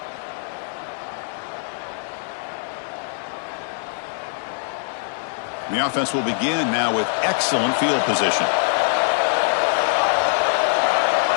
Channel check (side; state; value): right; silent; 64 dB below the other